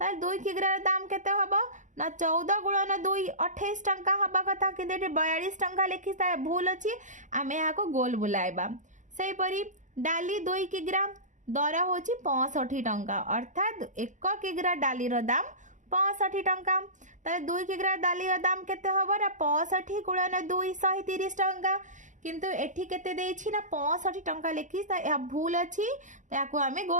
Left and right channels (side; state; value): left; late; 0.36 ms